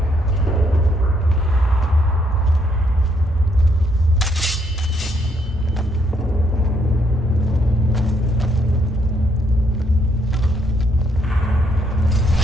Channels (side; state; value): both; normal; correlation 0.72